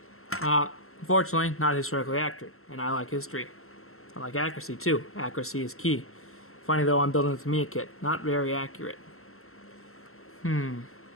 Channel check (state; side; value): late; right; 0.62 ms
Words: Unfortunately, not historically accurate, and I like history. I like accuracy too. Accuracy is key. Funny though, I'm building a Tamiya kit. Not very accurate.